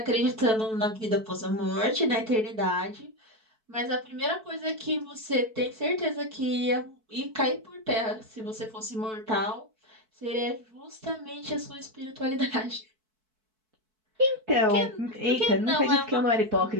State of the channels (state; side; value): late; left; 4.6 ms